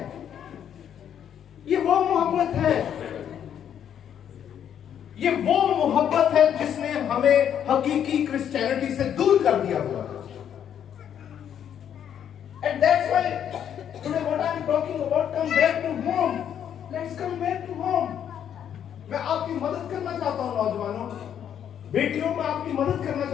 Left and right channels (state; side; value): quieter; right; 9.2 dB